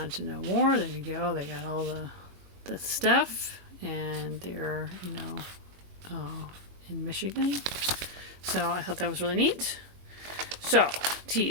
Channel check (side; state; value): left; late; 22 ms